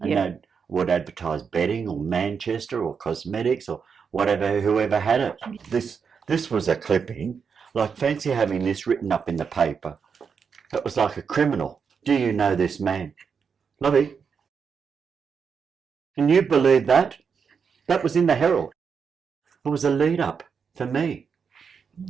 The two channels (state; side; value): quieter; left; 6.2 dB